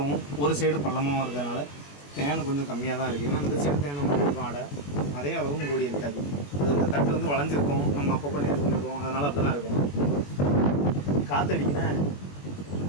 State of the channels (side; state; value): right; late; 21 ms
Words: ஒரு சைடு பள்ளமாகவும் இருக்கிறதுனால தேனை கொஞ்சம் கம்மியாக தான் இருக்குது. ஏன்னா இந்த சைடு தேனை இருக்கும் ஆடை, அதே அளவும் கூடி இருக்காது. அது இந்த தட்டு வந்து வளைஞ்சிருக்கும், நம்ம அப்பப்போ நேர் பண்ணிடுவோம், அதனால் அப்படி தான் இருக்கும். காற்றடிக்கினா